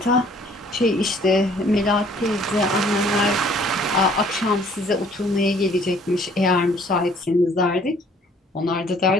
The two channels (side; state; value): both; normal; correlation 0.58